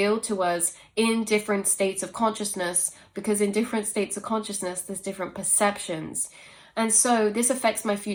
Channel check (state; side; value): identical; both; correlation 1.00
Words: to us in different states of consciousness, because in different states of consciousness there's different perceptions. And so this affects my